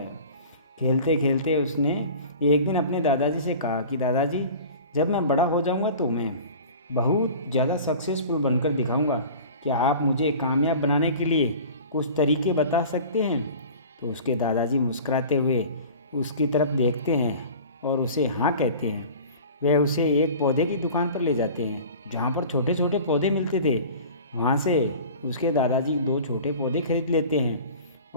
खेलते खेलते उसने एक दिन अपने दादाजी से कहा कि दादाजी, जब मैं बड़ा हो जाऊंगा तो मैं बहुत ज़्यादा सक्सेसफुल बनकर दिखाऊंगा। क्या आप मुझे कामयाब बनाने के लिए कुछ तरीके बता सकते हैं? तो उसके दादाजी मुस्कुराते हुए उसकी तरफ देखते हैं और उसे हाँ कहते हैं। वह उसे एक पौधे की दुकान पर ले जाते हैं जहाँ पर छोटे छोटे पौधे मिलते थे। वहाँ से उसके दादाजी 2 छोटे पौधे खरीद लेते हैं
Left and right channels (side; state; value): both; inverted; correlation -0.40